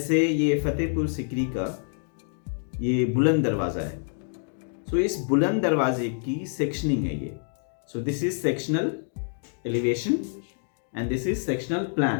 ये फतेहपुर सिकरी का ये बुलंद दरवाज़ा है, सो इस बुलंद दरवाजे की सेक्शनिंग है ये। So this is sectional elevation and this is sectional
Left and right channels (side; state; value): right; silent; 60 dB below the other